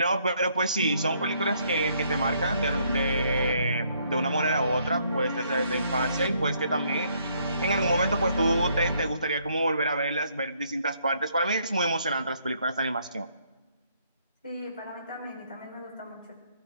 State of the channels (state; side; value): inverted; both; correlation -0.69